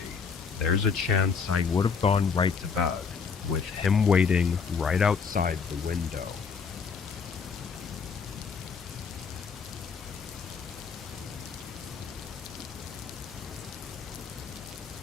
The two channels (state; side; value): quieter; right; 5.7 dB